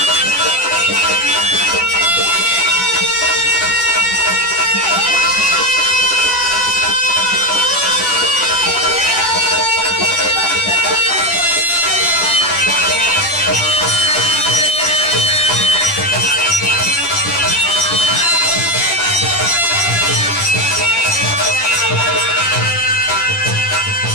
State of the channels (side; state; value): right; late; 10 ms